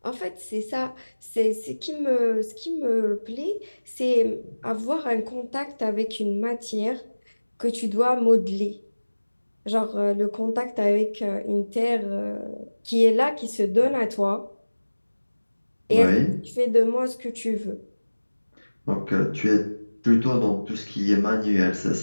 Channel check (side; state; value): both; inverted; correlation -1.00